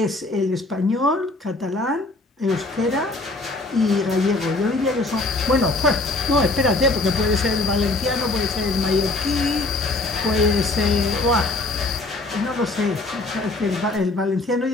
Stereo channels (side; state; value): right; quieter; 3.1 dB